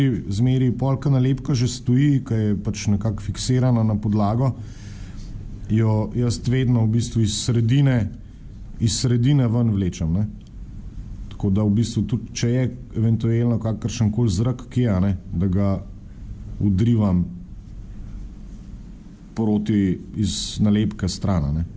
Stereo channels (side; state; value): both; identical; correlation 1.00